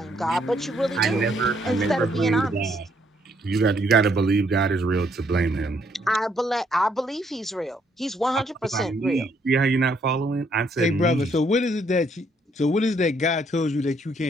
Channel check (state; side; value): normal; both; correlation 0.70